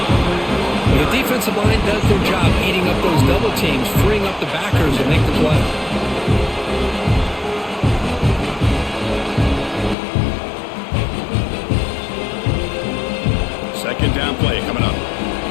Well, the defensive line does their job eating up those double teams, freeing up the backers to make the play. Second down play coming up.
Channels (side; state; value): right; drops out; at 10.0 s